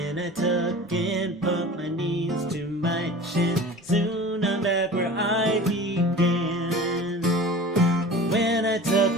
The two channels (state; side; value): normal; both; correlation 0.38